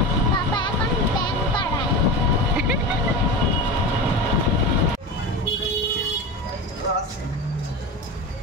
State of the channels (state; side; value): normal; both; correlation 0.26